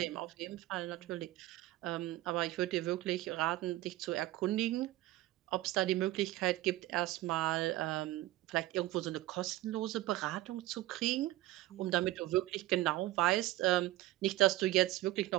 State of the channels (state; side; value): quieter; left; 16.6 dB